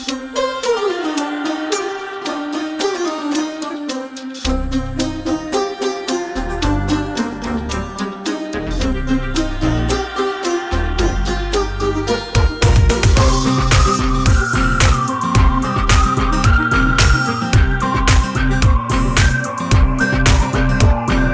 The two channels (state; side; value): identical; both; correlation 1.00